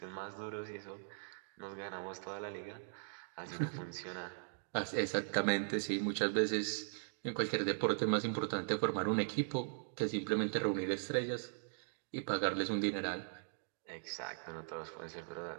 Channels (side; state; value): left; silent; digital silence